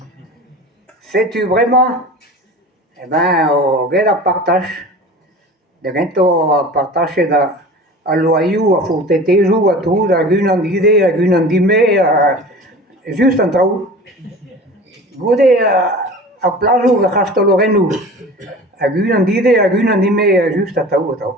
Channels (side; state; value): both; normal; correlation 0.38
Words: Se tu vraiment eh ben o gera partage. De gento partage da a loiu, a furteteju, a tu, a gun an dide, a gun an dime, just an trau. Gode a plaju a chasto lorenu, a gun an dide, a gun an dime, just a trau, a